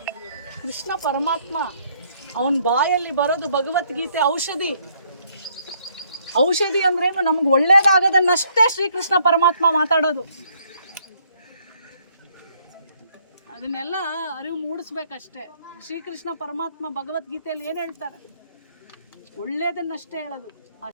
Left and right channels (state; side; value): inverted; both; correlation -0.68